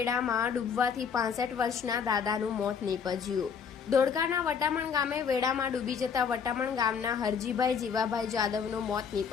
ડૂબવાથી 65 વર્ષના દાદાનું મોત નીપજ્યું। ધોળકાના વટામણ ગામે વેડામાં ડૂબી જતા વટામણ ગામના હરજીભાઈ જીવાભાઈ જાદવનું મોત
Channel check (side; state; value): right; quieter; 6.7 dB